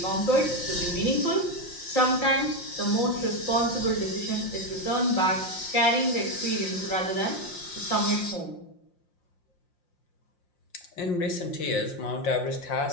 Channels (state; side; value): late; right; 5.6 ms